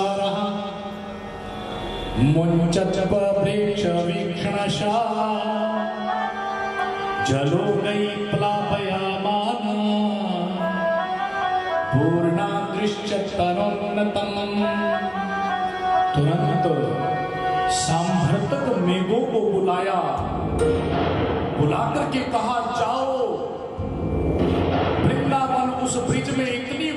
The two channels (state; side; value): identical; both; correlation 1.00